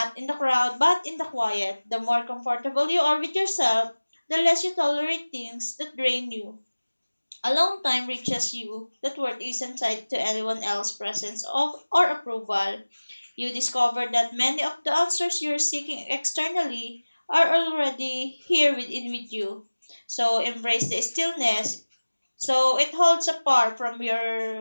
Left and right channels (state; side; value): inverted; both; correlation -1.00